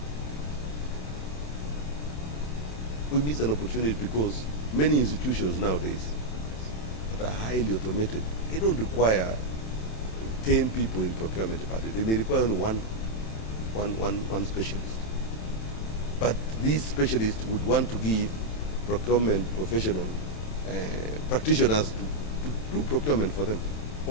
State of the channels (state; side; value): late; right; 27 ms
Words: We miss an opportunity because many institutions nowadays that are highly automated, they don't require 10 people in procurement department. They may require only one specialist. But these specialists would want to give procurement professional practitioners to do procurement for them,